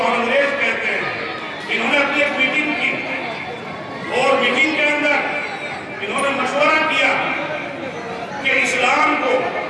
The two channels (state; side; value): identical; both; correlation 1.00